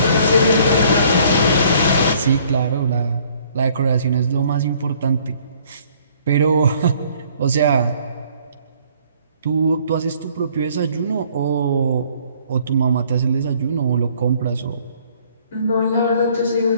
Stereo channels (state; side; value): inverted; both; correlation -0.60